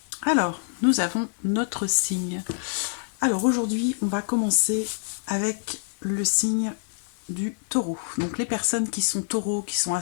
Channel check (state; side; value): silent; right; digital silence